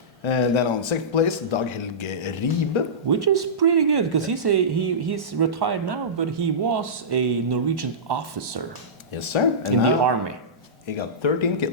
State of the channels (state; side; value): normal; both; correlation -0.19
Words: And then on second place, Dag Helge Ribe. Which is pretty good, because he's retired now, but he was a Norwegian officer. Yes, sir. And in the army. He got 13